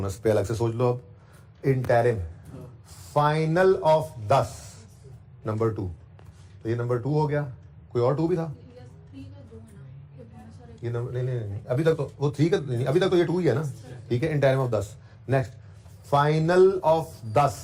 पे अलग से सोच लो अब। इंटरिम, फाइनल ऑफ 10 नंबर 2, तो ये नंबर 2 हो गया। कोई और 2 भी था? ये नंबर नहीं, अभी तक तो वो 3 का नहीं, अभी तक तो ये 2 ही है ना, ठीक है। Interim of 10। Next, final of 10,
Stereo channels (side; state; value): both; identical; correlation 1.00